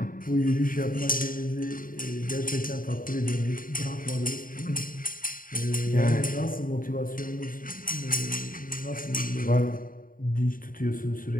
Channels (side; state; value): right; late; 0.40 ms